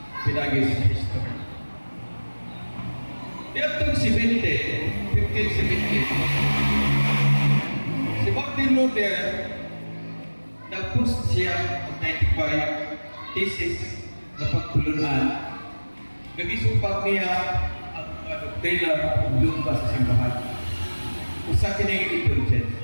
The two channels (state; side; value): inverted; both; correlation -1.00